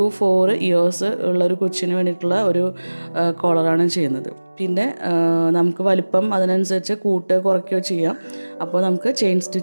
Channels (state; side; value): inverted; both; correlation -1.00